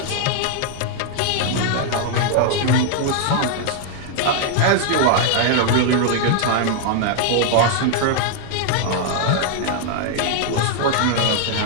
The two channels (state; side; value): different; both; correlation 0.00